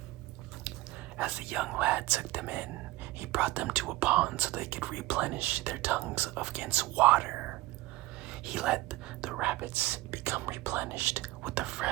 As the young lad took them in, he brought them to a pond so they could replenish their tongues against water. He let the rabbits become replenished with the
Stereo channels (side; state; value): left; quieter; 18.9 dB